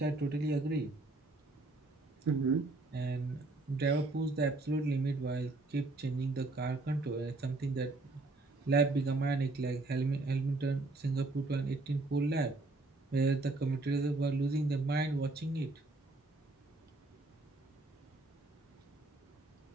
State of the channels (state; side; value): quieter; left; 3.1 dB